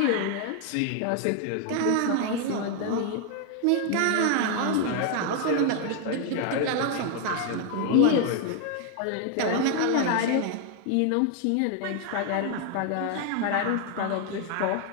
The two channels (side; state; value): both; different; correlation 0.00